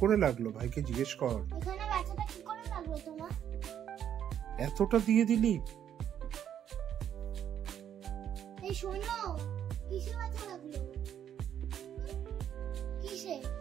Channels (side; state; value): left; quieter; 9.6 dB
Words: করে লাগলো? ভাইকে জিজ্ঞেস কর। এতটা দিয়ে দিলি?